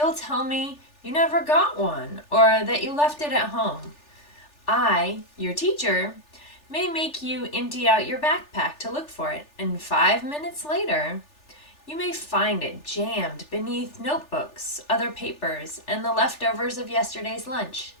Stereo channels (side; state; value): right; late; 3.4 ms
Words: tell me you never got one or that you left it at home. I, your teacher, may make you empty out your backpack to look for it, and 5 minutes later, you may find it jammed beneath notebooks, other papers, and the leftovers of yesterday's lunch.